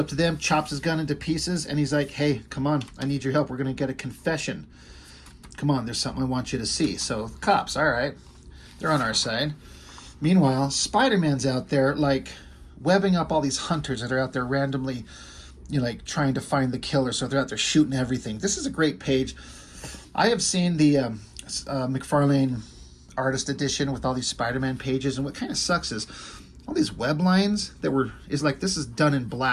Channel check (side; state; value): both; identical; correlation 1.00